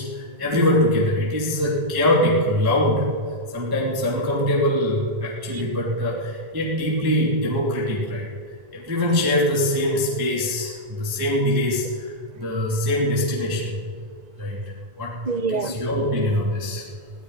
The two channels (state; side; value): late; left; 1.1 ms